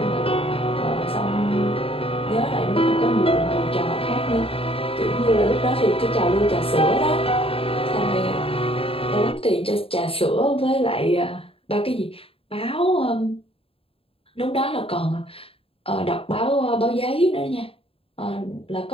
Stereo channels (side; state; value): right; late; 0.27 ms